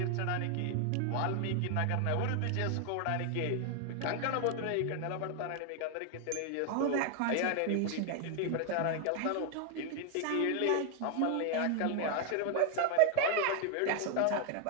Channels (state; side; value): different; both; correlation 0.00